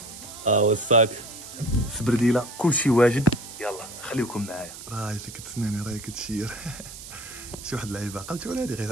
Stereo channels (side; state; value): right; noise; hiss, 13 dB below the sound